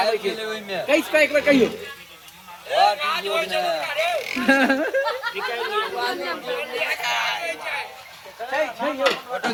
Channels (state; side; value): identical; both; correlation 1.00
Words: छै। कैस का एक बार कहियो। छै यो फोटो